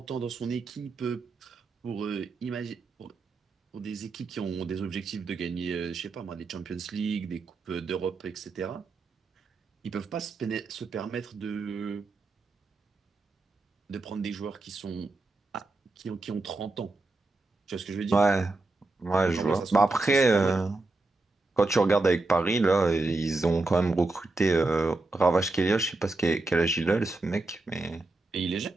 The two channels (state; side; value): quieter; left; 3.3 dB